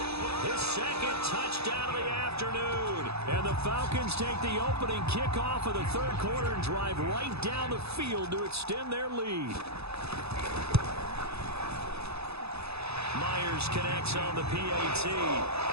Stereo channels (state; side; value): late; left; 0.79 ms